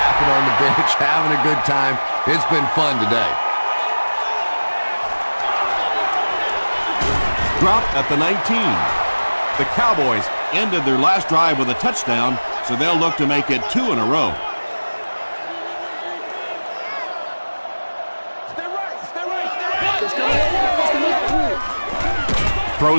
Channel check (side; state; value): both; inverted; correlation -1.00